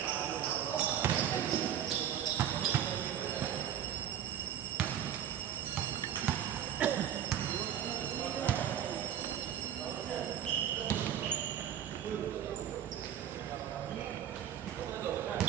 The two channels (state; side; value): quieter; left; 10.1 dB